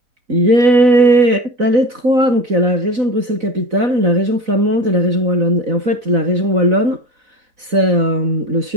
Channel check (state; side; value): late; left; 4.0 ms